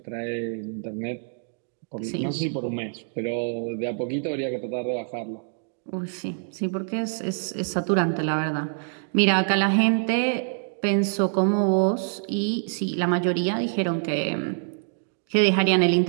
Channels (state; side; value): silent; left; digital silence